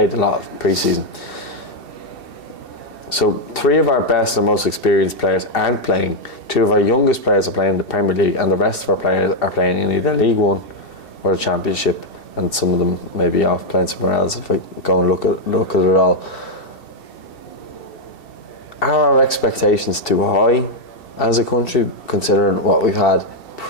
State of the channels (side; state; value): right; late; 2.7 ms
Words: a lot of pre-season. So 3 of our best and most experienced players aren't playing. 2 of our youngest players are playing in the Premier League, and the rest of our players are playing in either League One or the Championship. and some of them may be off playing somewhere else if I go and look at it all. Are our expectations too high as a country, considering what we've had